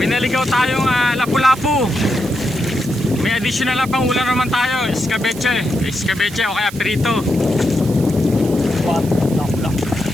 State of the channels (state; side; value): noise; right; hiss, 16 dB below the sound